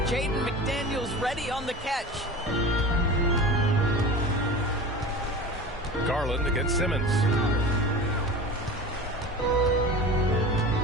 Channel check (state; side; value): normal; both; correlation 0.34